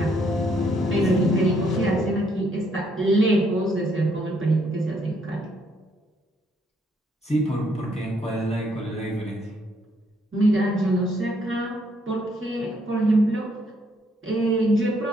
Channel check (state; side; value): normal; both; correlation 0.70